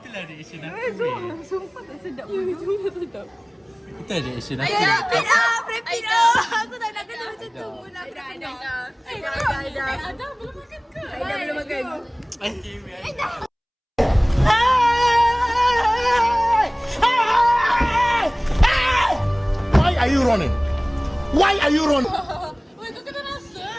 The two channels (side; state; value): both; identical; correlation 1.00